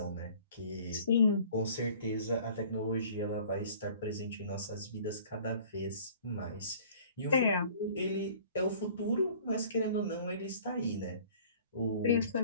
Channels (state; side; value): inverted; both; correlation -0.51